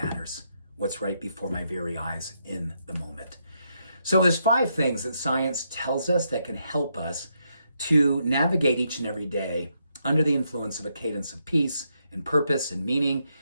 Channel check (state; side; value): inverted; both; correlation -0.79